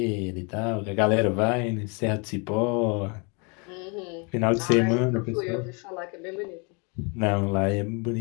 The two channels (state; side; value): quieter; right; 33.3 dB